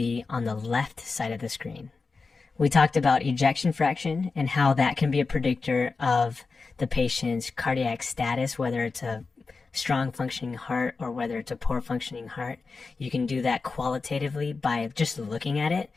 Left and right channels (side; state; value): right; quieter; 4.3 dB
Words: on the left side of the screen. We talked about ejection fraction and how that can be a predictor of the patient's cardiac status, whether it's a strong functioning heart or whether it's a poor functioning heart. You can do that qualitatively by just looking at it,